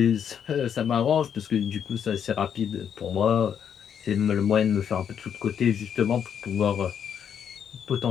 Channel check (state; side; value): quieter; right; 8.2 dB